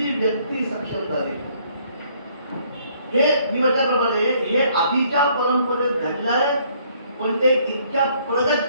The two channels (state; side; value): inverted; both; correlation -0.64